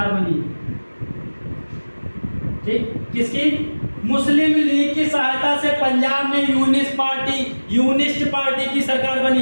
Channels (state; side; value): inverted; both; correlation -1.00